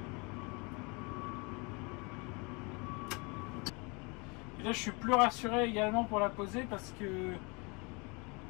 Et là, je suis plus rassuré également pour la poser parce que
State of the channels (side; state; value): right; quieter; 29.9 dB